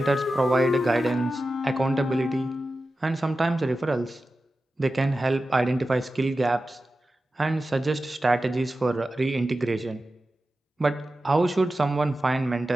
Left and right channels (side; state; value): both; normal; correlation 0.93